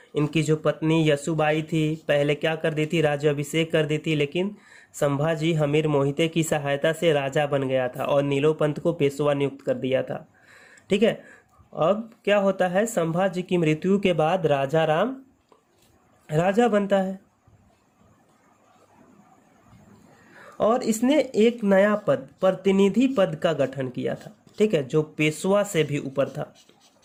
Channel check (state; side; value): identical; both; correlation 1.00